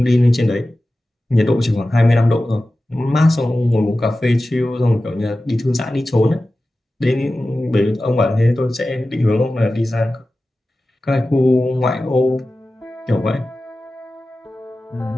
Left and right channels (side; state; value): both; normal; correlation 0.95